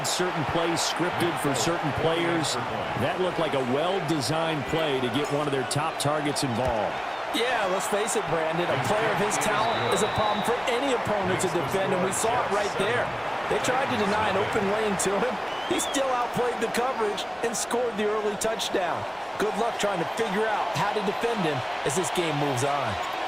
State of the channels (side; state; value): both; identical; correlation 1.00